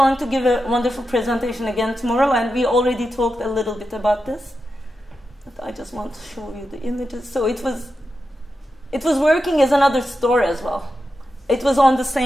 to give a wonderful presentation again tomorrow, and we already talked a little bit about this. But I just want to show you the images. So it was working as another store as well. It was on the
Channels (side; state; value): both; normal; correlation 0.89